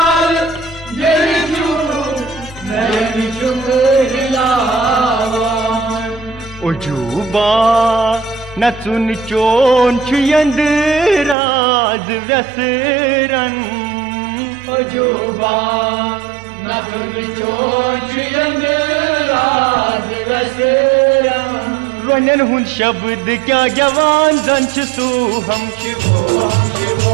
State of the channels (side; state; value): left; drops out; at 11.4 s